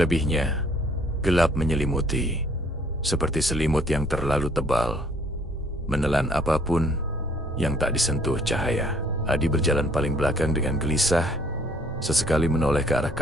gelap menyelimuti, seperti selimut yang terlalu tebal, menelan apapun yang tak disentuh cahaya. Adi berjalan paling belakang dengan gelisah, sesekali menoleh ke arah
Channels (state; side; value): normal; both; correlation 0.61